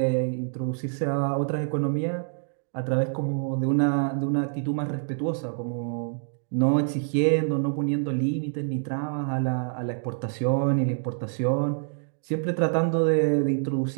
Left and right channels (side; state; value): left; silent; digital silence